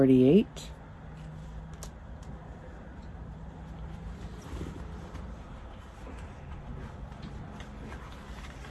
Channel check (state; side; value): identical; both; correlation 1.00